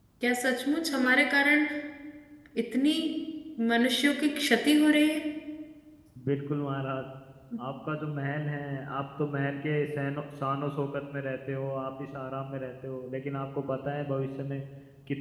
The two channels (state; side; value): identical; both; correlation 1.00